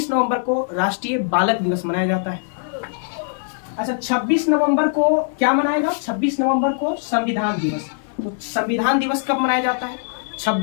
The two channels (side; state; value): right; silent; 65 dB below the other